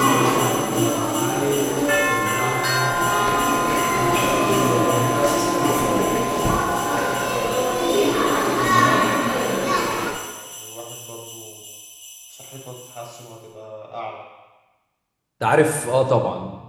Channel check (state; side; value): identical; both; correlation 1.00